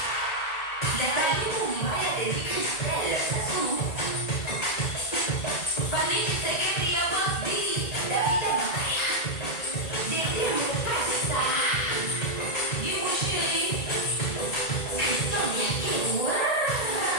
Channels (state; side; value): late; right; 1.8 ms